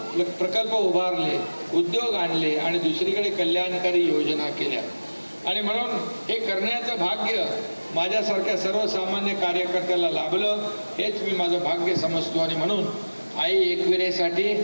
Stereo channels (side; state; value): both; inverted; correlation -1.00